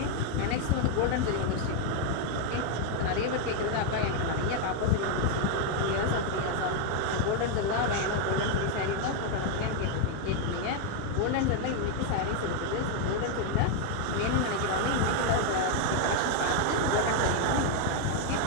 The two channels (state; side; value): different; both; correlation 0.00